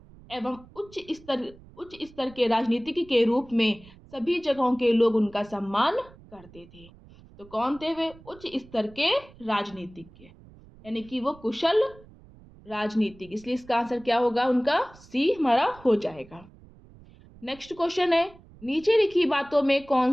एवं उच्च स्तर के राजनीतिक के रूप में सभी जगहों के लोग उनका सम्मान करते थे। तो कौन थे वे? उच्च स्तर के राजनीतिज्ञ, यानी कि वो कुशल राजनीतिक, इसलिए इसका आंसर क्या होगा उनका सी हमारा हो जाएगा। नेक्स्ट क्वेश्चन है, नीचे लिखी बातों में कौन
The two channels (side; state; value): right; noise; rumble, 23 dB below the sound